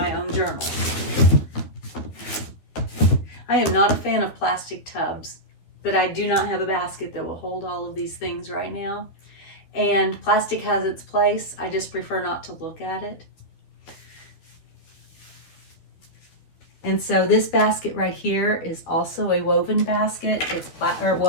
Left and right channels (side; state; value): right; late; 12 ms